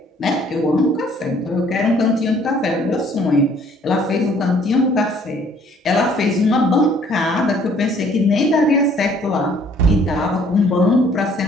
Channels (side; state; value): both; normal; correlation 0.59